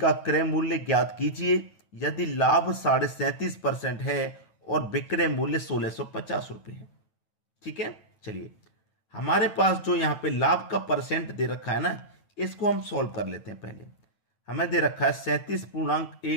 क्रय मूल्य ज्ञात कीजिए यदि लाभ 37.5% है और विक्रय मूल्य 1650 रुपये है। ठीक है, चलिए हमारे पास जो यहाँ पे लाभ का परसेंट दे रखा है ना, इसको हम सॉल्व कर लेते हैं। पहले हमें दे रखा है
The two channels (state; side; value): late; right; 9.2 ms